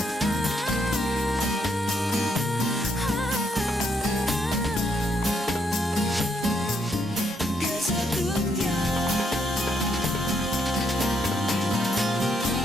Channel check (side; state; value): both; normal; correlation 0.75